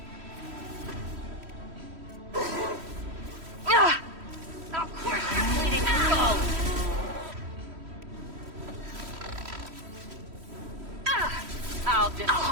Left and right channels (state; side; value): late; left; 3.1 ms